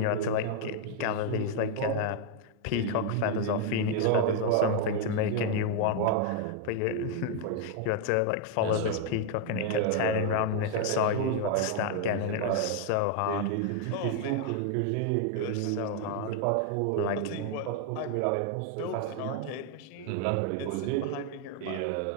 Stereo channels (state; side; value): different; both; correlation 0.00